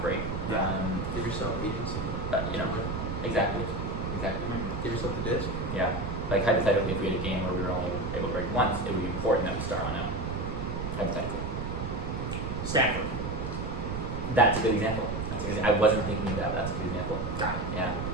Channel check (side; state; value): right; noise; rumble, 4 dB below the sound